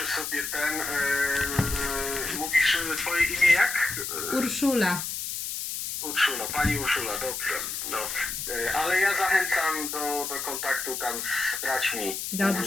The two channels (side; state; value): left; noise; hiss, 4 dB below the sound